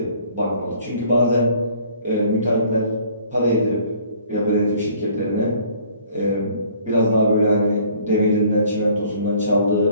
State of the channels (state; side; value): inverted; both; correlation -0.56